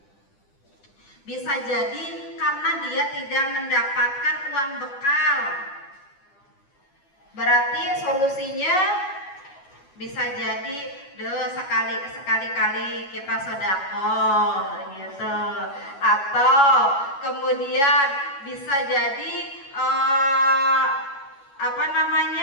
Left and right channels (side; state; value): right; late; 11 ms